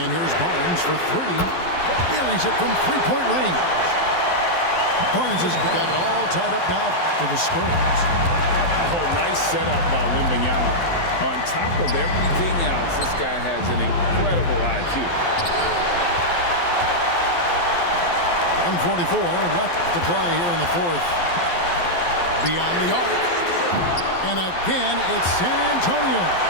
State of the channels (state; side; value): late; right; 12 ms